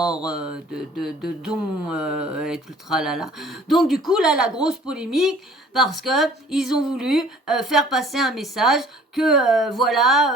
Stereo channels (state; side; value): normal; both; correlation 0.52